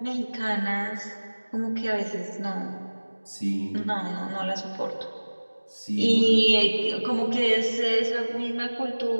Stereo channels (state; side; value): inverted; both; correlation -1.00